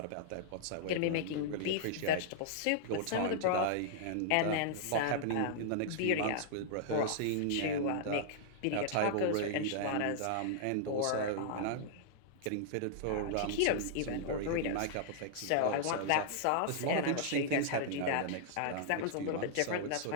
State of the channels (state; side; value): different; both; correlation -0.01